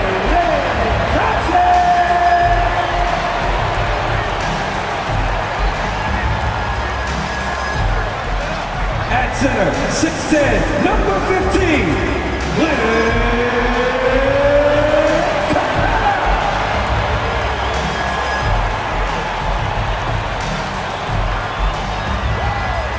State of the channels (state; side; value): identical; both; correlation 1.00